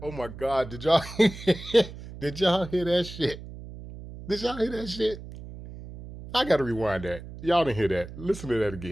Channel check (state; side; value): noise; right; hum, 13 dB below the sound